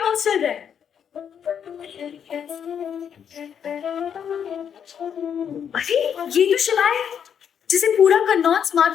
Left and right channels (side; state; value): right; quieter; 8.1 dB